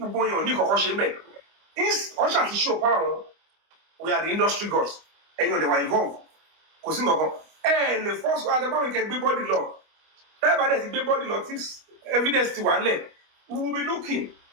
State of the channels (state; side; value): late; left; 25 ms